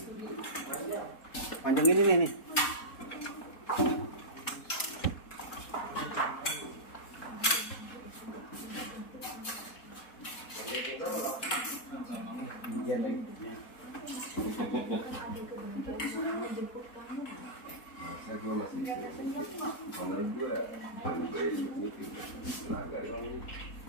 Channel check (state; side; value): late; right; 4.1 ms